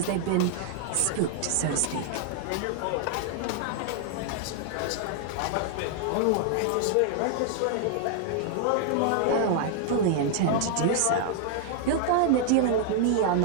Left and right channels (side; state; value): both; different; correlation 0.00